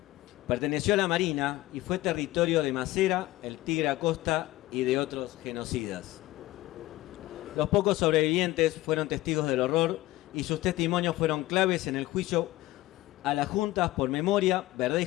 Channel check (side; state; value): right; quieter; 17.5 dB